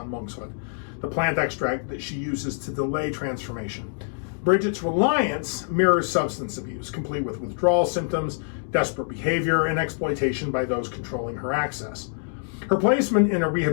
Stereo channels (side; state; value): right; silent; digital silence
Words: monkshood, the plant extract that she uses to delay transformation. Bridget's reliance mirrors substance abuse, complete with withdrawal symptoms, desperate behavior, and exploitation by those controlling her access. Her placement in a